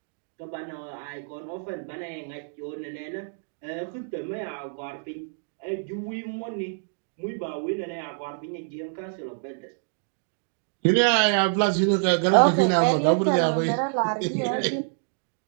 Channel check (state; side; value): silent; left; digital silence